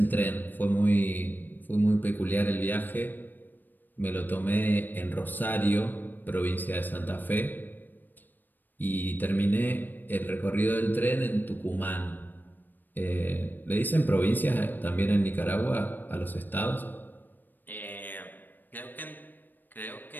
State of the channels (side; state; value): right; late; 0.090 ms